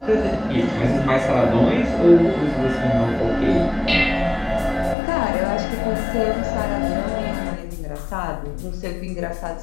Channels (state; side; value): drops out; right; at 5.0 s